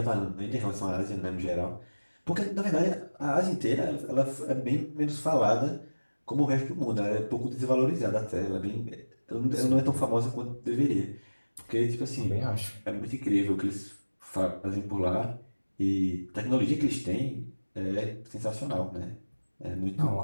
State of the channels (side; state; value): both; inverted; correlation -1.00